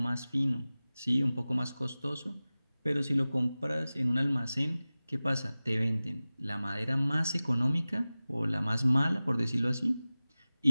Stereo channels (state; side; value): inverted; both; correlation -0.97